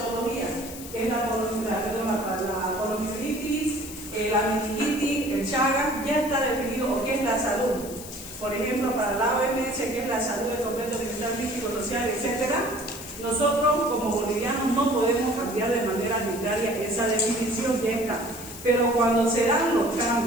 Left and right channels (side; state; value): left; noise; hiss, 13 dB below the sound